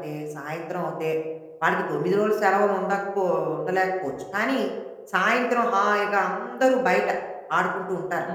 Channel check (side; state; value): both; identical; correlation 1.00